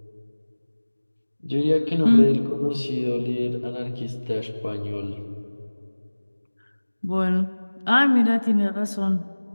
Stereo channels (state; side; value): inverted; both; correlation -1.00